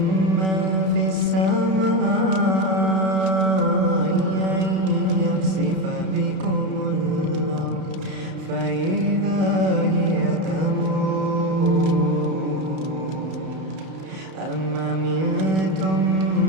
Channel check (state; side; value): late; left; 32 ms